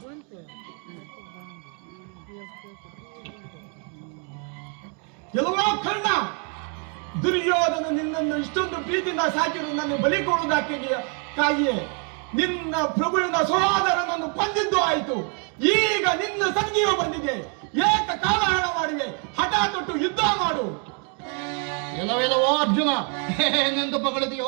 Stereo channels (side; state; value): left; quieter; 39.0 dB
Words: ಎಲ್ಲವೋ ಕರ್ಣ, ದುರ್ಯೋಧನ ನಿನ್ನನ್ನು ಇಷ್ಟೊಂದು ಪ್ರೀತಿಯಿಂದ ಸಾಕಿರು ನನ್ನ ಬಲಿ ಕೊಡುವುದಕ್ಕಾಗಿಯೇ ನಿನ್ನ ಪ್ರಭುವಿನ ಸಹೋದರನನ್ನು ಕೊಂದಿದ್ದು ಆಯಿತು. ಈಗ ನಿನ್ನ ಸಂಧಿಯು ಬಂದಿದೆ. ಏಕ ಕಾಲಹರಣ ಮಾಡಿವೆ. ಹಠ ತೊಟ್ಟು ಯುದ್ಧ ಮಾಡು. ಎಲ್ಲವೆಲ್ಲವೋ ಅರ್ಜುನ, ಏನೆಂದು ಬಗಳಿದೆಯೋ